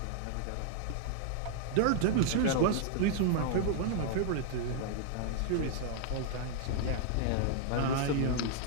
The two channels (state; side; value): different; both; correlation -0.01